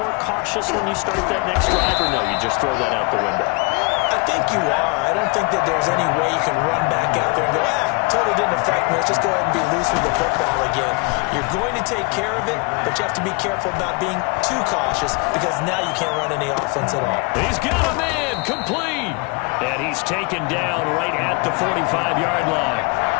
cautious when you start that next drive, or no, you just throw that out the window? I think you are. I don't think that there's any way you can run back out there and go, totally didn't affect me. Let's just go ahead and be loose with the football again. You're going to take care of it, but you have to be careful about being too cautious because now you can't run any offense at all. He's got a man complete. And he's taken down right at the 45-yard line.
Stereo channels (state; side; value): quieter; right; 30.1 dB